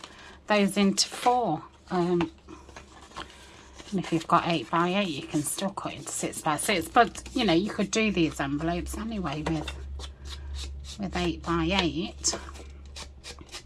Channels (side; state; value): both; identical; correlation 1.00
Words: those into 4. And if you've got 8x8, you can still cut into 6x6. But, you know, you could do these envelopes anyway with 8x8.